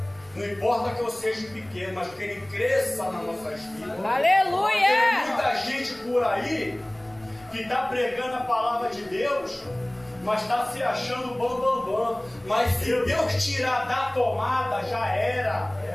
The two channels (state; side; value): noise; right; rumble, 27 dB below the sound